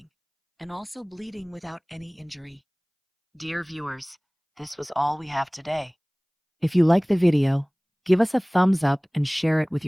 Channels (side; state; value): both; identical; correlation 1.00